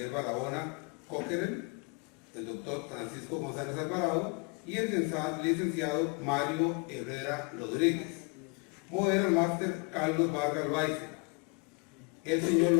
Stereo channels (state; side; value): quieter; right; 32.9 dB